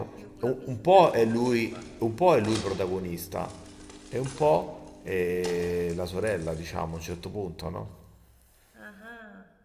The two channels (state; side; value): identical; both; correlation 1.00